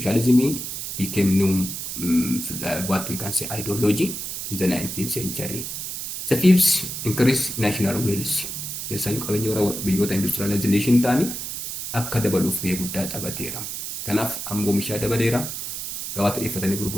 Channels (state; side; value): noise; right; hiss, 6 dB below the sound